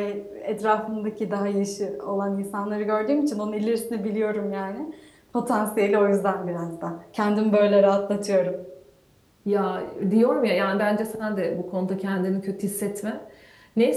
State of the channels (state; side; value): identical; both; correlation 1.00